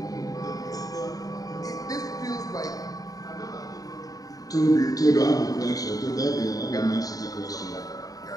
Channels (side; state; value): right; late; 0.18 ms